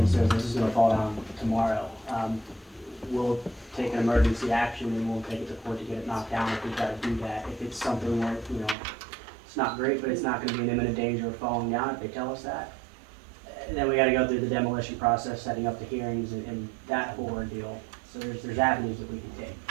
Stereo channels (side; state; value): left; drops out; at 8.8 s